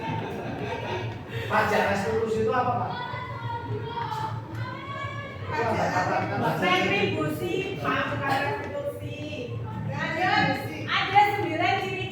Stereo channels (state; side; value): identical; both; correlation 1.00